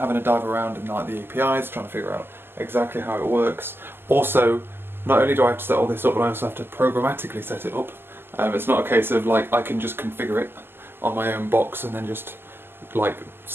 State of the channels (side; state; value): left; late; 0.11 ms